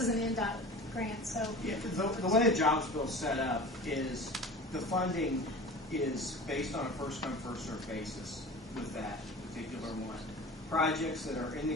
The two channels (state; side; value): normal; both; correlation 0.37